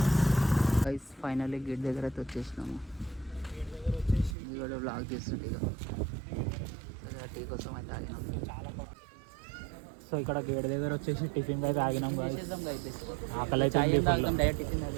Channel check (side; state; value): left; drops out; at 4.4 s